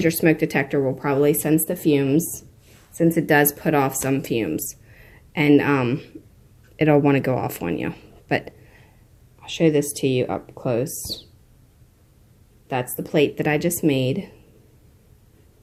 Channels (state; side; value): identical; both; correlation 1.00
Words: your smoke detector will probably sense the fumes, since it does put off some fumes. And it'll want to go off on you. But I'll show this to you up close. That's the plate that I just made